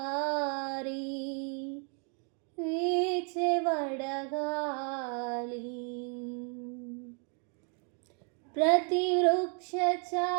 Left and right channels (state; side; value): quieter; left; 38.7 dB